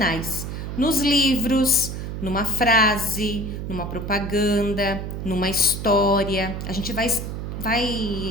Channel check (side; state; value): right; noise; hum, 6 dB below the sound